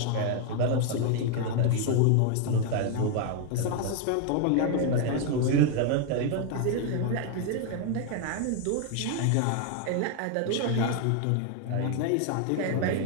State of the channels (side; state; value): both; different; correlation 0.00